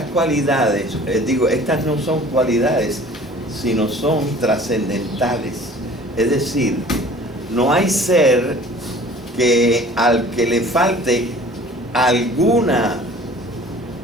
cualidades, estas no son cualidades, sino son trascendentales. Es decir, no hay ser que al que le falte alguna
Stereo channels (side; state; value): both; normal; correlation 0.47